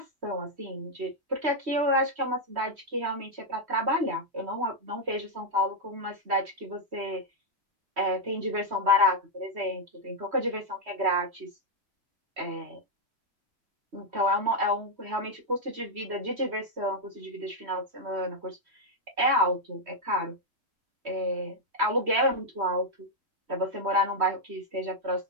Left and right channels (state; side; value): late; left; 3.1 ms